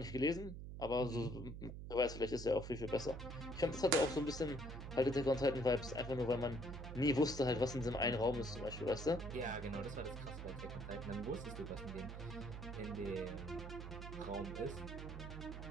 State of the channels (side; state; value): right; noise; hum, 8 dB below the sound